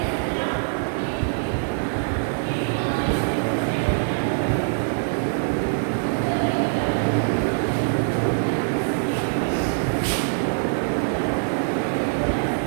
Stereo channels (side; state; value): left; silent; 61 dB below the other